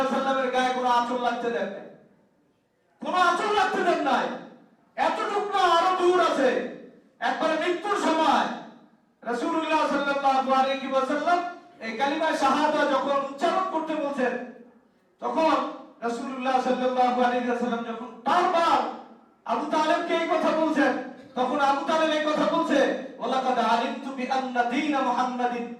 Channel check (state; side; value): identical; both; correlation 1.00